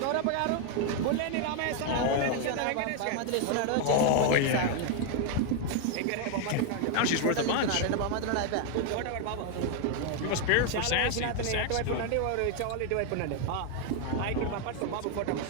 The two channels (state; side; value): different; both; correlation 0.00